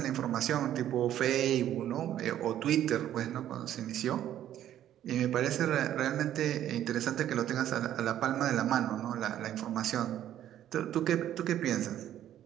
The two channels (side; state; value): left; quieter; 11.5 dB